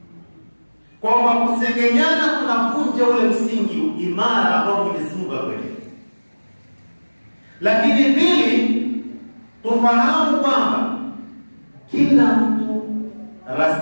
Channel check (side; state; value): both; inverted; correlation -1.00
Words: Kwa kusengenyana kunavunja ule msingi imara ambao Mwenyezi Mungu akweleza. Lakini pili, tufahamu kwamba kila mtu